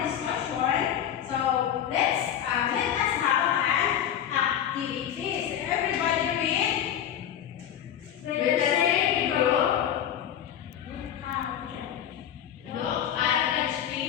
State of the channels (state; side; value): quieter; right; 10.0 dB